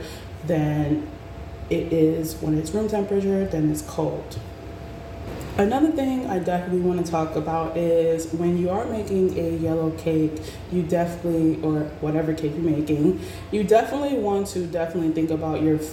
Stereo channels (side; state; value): both; identical; correlation 1.00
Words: than it is when it's room temperature than it's cold. Another thing I definitely want to talk about is when you are making a yellow cake, you definitely, or whatever cake you're making, you definitely want to think about your